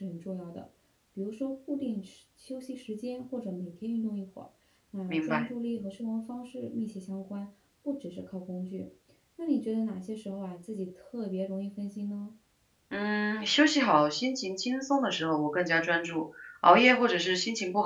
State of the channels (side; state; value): both; identical; correlation 1.00